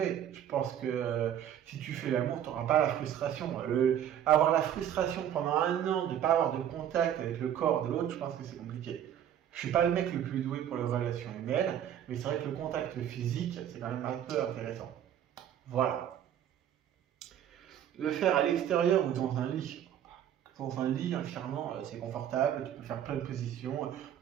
Je pense que si tu fais l'amour, tu n'auras pas la frustration. Avoir la frustration pendant 1 an de ne pas avoir de contact avec le corps de l'autre, je pense que c'est compliqué. Je suis pas le mec le plus doué pour les relations humaines, mais c'est vrai que le contact physique, c'est quand même un peu intéressant. Voilà. Le faire à l'extérieur ou dans un lit. Dans un lit, entièrement, c'est confortable, tu peux faire plein de positions,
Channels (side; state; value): left; quieter; 10.2 dB